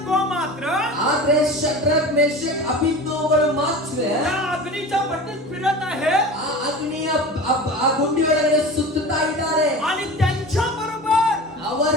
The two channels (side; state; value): both; normal; correlation 0.34